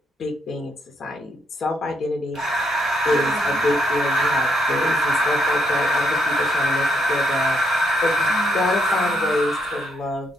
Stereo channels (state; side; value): normal; both; correlation 0.74